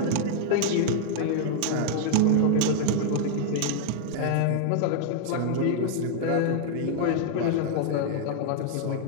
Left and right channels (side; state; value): both; different; correlation -0.01